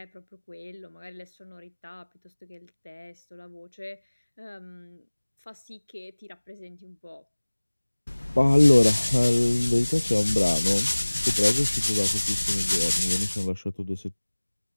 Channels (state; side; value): inverted; both; correlation -1.00